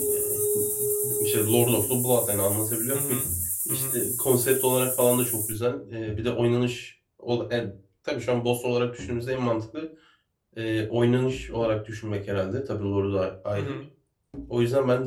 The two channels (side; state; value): both; identical; correlation 1.00